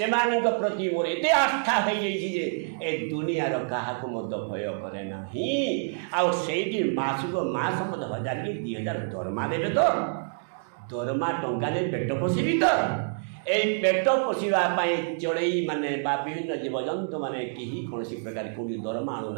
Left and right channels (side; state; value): left; silent; digital silence